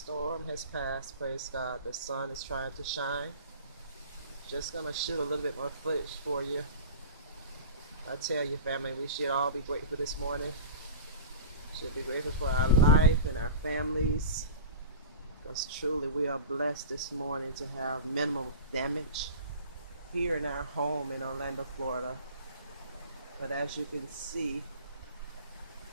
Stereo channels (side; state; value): both; inverted; correlation -0.35